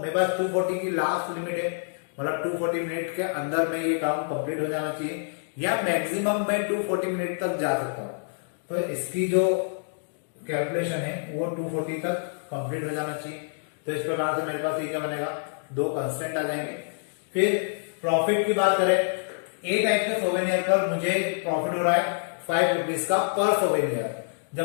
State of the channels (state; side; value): silent; right; digital silence